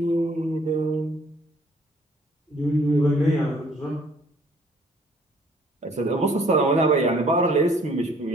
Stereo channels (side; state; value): both; normal; correlation 0.60